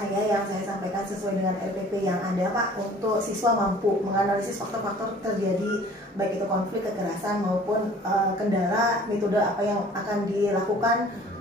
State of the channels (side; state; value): both; normal; correlation 0.50